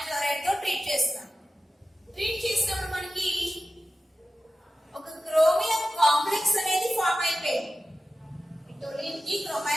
క్లోరైడ్ తో ట్రీట్ చేస్తాం. ట్రీట్ చేసినప్పుడు మనకి క్రోమియం కాంప్లెక్స్ అనేది ఫామ్ అయిపోయింది. టోలిన్ కి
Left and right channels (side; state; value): both; normal; correlation 0.93